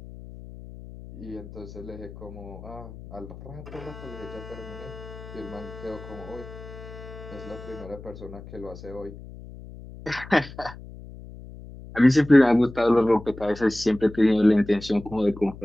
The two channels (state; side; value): noise; left; hum, 15 dB below the sound